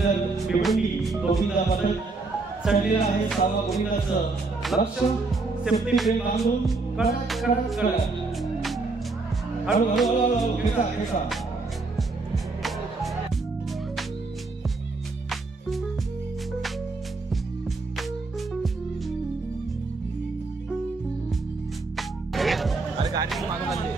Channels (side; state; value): left; quieter; 3.7 dB